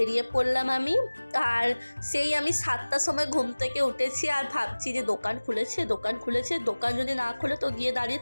পড়লাম আমি। আর সেই আমি 7টার সময় ঘুম থেকে উঠেছি আর ভাবছি যে দোকান খুলেছে, দোকান যদি না খুলে তো গিয়ে দাঁড়িয়ে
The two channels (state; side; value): inverted; both; correlation -1.00